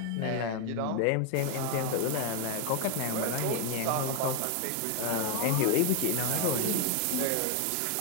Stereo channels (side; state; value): both; different; correlation 0.01